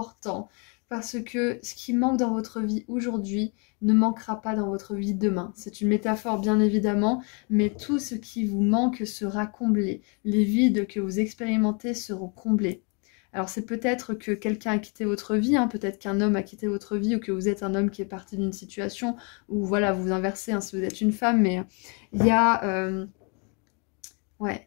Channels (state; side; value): quieter; right; 35.1 dB